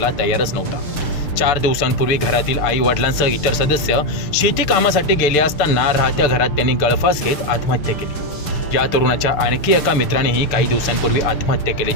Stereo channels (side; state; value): right; late; 6.7 ms